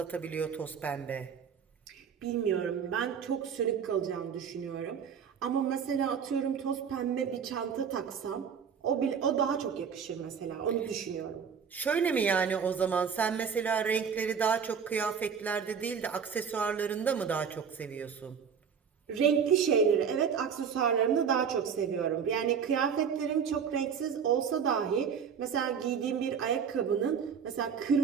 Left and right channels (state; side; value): quieter; left; 6.9 dB